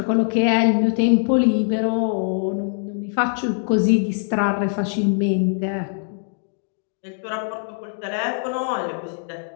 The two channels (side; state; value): right; silent; digital silence